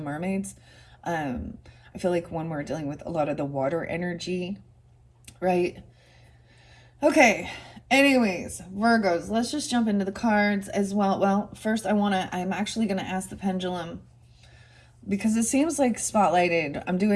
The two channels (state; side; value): identical; both; correlation 1.00